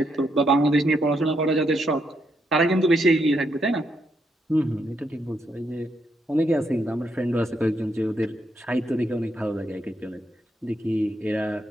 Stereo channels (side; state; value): both; normal; correlation 0.78